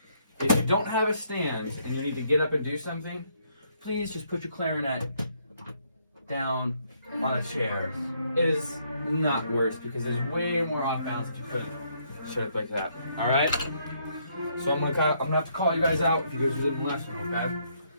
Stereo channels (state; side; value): inverted; both; correlation -0.71